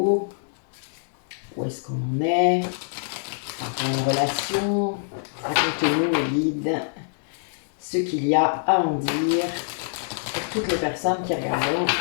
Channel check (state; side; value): silent; right; digital silence